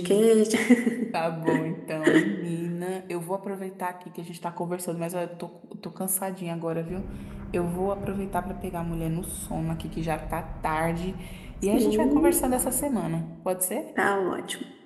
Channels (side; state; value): both; identical; correlation 1.00